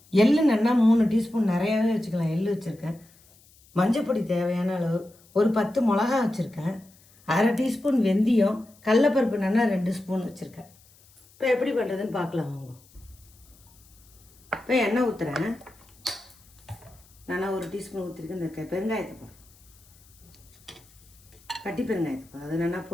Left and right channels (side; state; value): left; noise; hiss, 28 dB below the sound